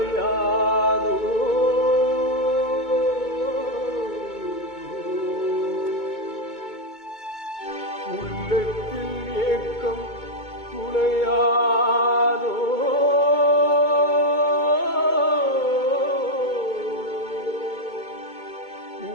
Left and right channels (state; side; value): late; right; 2.2 ms